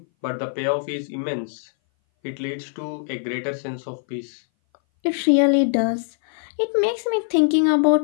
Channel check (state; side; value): silent; right; 59 dB below the other